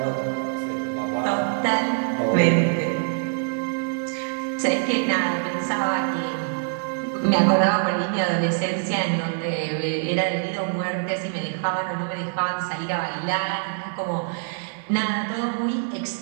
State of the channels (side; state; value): left; silent; digital silence